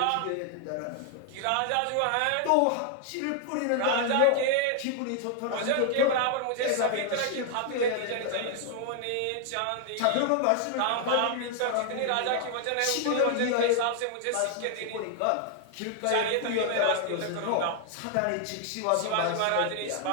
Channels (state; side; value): different; both; correlation 0.00